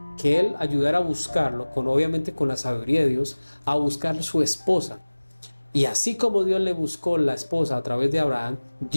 que él ayudara a buscarlo, obviamente con la sabiduría de Dios, a buscar su esposa. Y así como Dios le buscó la esposa a través de Abraham,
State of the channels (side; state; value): both; inverted; correlation -1.00